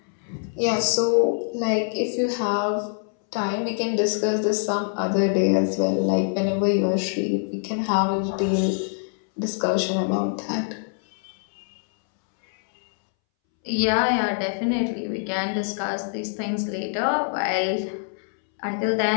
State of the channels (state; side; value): silent; right; 62 dB below the other